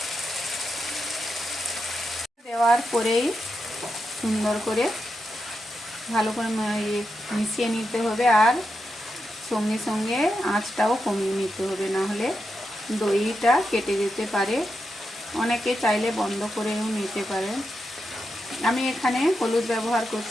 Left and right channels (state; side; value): normal; both; correlation 0.86